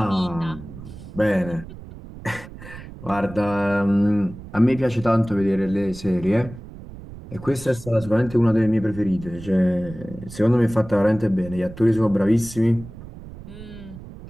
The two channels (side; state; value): right; noise; rumble, 15 dB below the sound